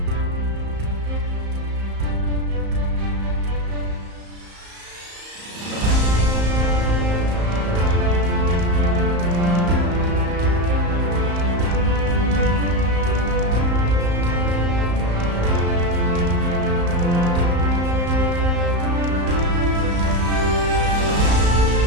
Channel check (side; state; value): left; late; 34 ms